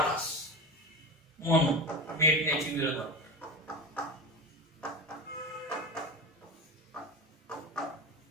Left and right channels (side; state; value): both; normal; correlation 0.25